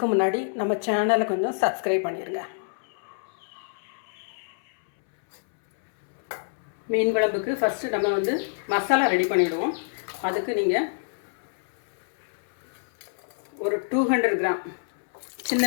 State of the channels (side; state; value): right; silent; 61 dB below the other